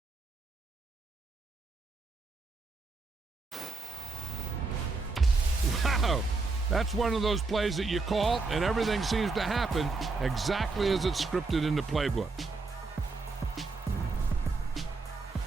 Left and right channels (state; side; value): quieter; left; 3.9 dB